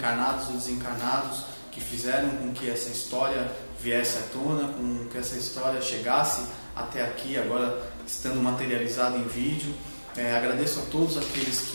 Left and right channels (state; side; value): inverted; both; correlation -1.00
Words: ou desencarnados, que fizeram com que essa história viesse à tona, com que essa história chegasse até aqui, agora estando materializada em vídeo. Agradeço a todos aqueles